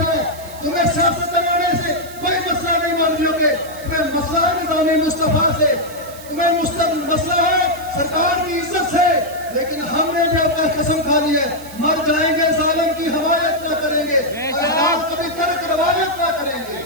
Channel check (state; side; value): noise; right; hiss, 18 dB below the sound